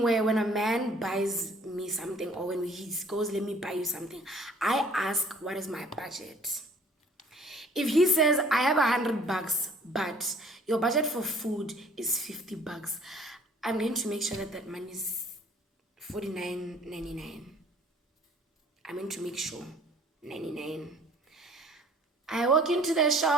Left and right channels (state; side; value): normal; both; correlation 0.54